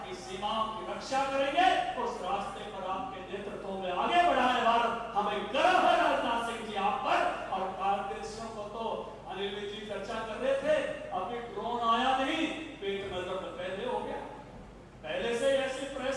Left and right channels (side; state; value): both; identical; correlation 1.00